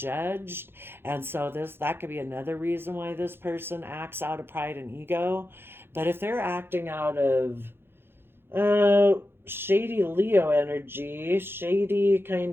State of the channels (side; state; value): left; late; 0.11 ms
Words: And so that could be another reason why this person acts out of pride and ego. But if they're acting out of uh, shady Leo energy, shady